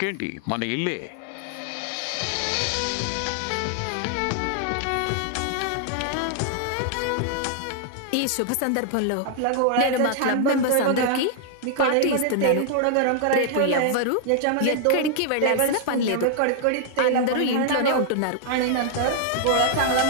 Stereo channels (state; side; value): different; both; correlation -0.01